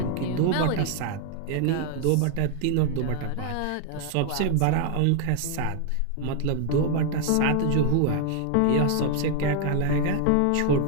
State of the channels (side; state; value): both; different; correlation 0.00